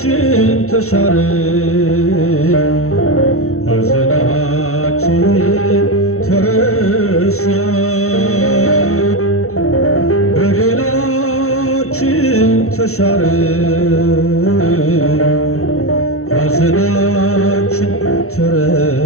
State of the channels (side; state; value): right; late; 0.63 ms